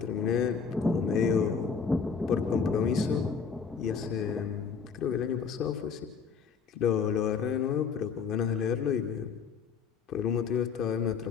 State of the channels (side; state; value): right; quieter; 6.0 dB